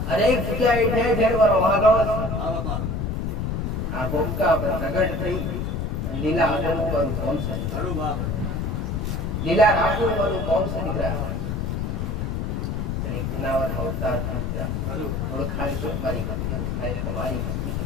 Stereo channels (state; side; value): noise; left; rumble, 1 dB below the sound